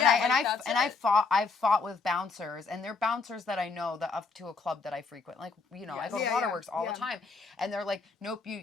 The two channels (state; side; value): quieter; right; 4.4 dB